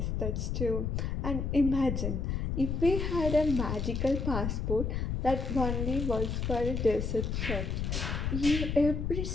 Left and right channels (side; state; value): left; noise; rumble, 1 dB below the sound